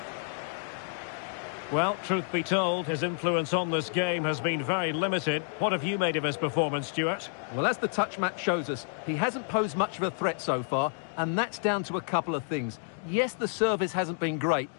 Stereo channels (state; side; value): silent; right; digital silence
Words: Well, truth be told, his influence on this game has been very limited. What have you made of his performance, Stuart? Well, as the touch match shows us, he hasn't posed much of a threat so far, and that's down to a couple of things. Yes, the service hasn't been great,